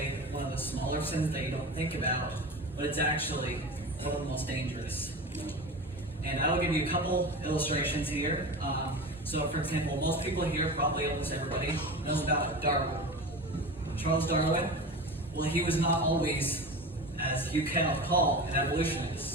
one of the smaller sins that you don't think about, but it's actually one of the most dangerous. And I will give you a couple illustrations here. So, for example, most people here, probably almost everybody, knows about Darwin. Charles Darwin, well, he was not always, as you cannot call, an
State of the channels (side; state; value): both; normal; correlation 0.30